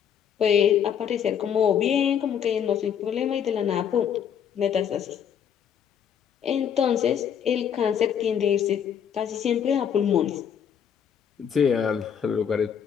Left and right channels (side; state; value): right; quieter; 8.3 dB